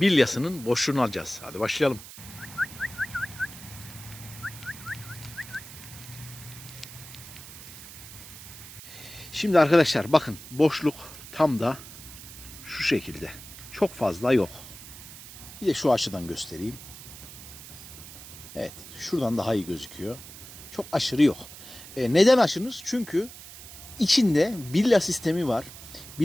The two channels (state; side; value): noise; right; hiss, 15 dB below the sound